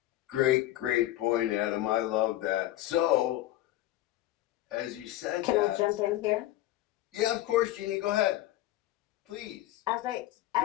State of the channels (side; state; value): right; quieter; 15.0 dB